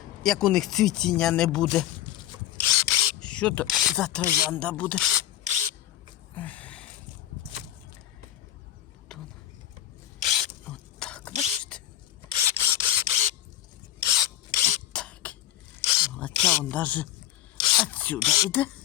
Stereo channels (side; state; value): right; quieter; 13.1 dB